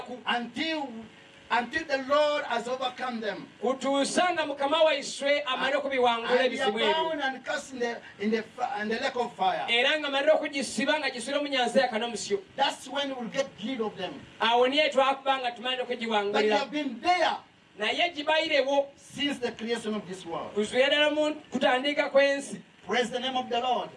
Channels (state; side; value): identical; both; correlation 1.00